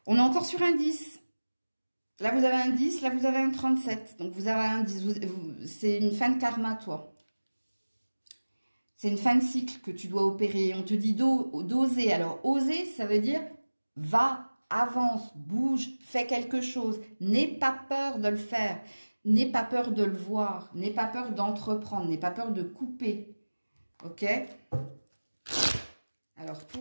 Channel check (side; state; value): both; inverted; correlation -1.00